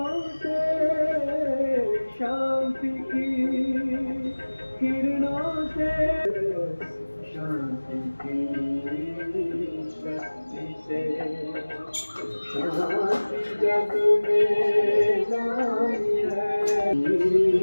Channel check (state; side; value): inverted; both; correlation -1.00